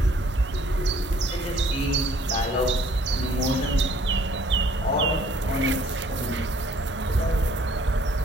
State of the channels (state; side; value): normal; both; correlation 0.59